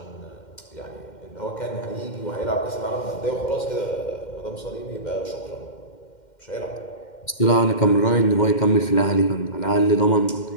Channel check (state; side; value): late; right; 2.1 ms